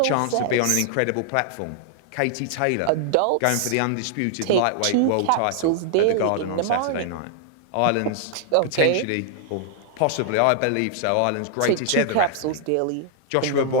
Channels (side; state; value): both; different; correlation 0.00